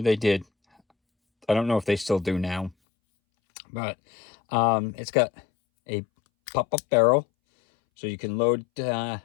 they did. I don't know if they still do now, but it's got a pop-up barrel, so you can load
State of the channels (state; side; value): drops out; right; at 2.8 s